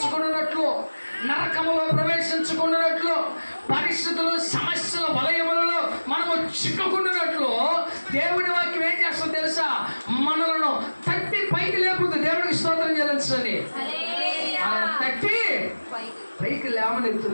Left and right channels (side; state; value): both; inverted; correlation -1.00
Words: నరకములో ప్రవేశించుకున్నట్లు, పరిస్థితులు సమస్యల వలయములలో మనము చిక్కుకున్నట్లు దేవుడి వాక్యం ఏం చేస్తుంది తెలుసా? మనలను తట్టి పైకి లేపుతుంది. దేవుడికి స్తోత్రం చెల్లించండి. మనల్ని తట్టి పైకి